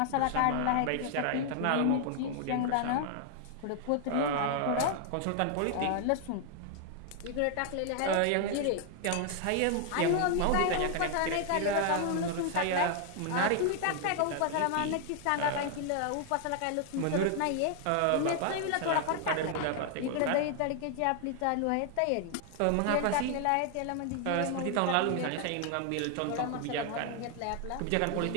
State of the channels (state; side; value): different; both; correlation 0.00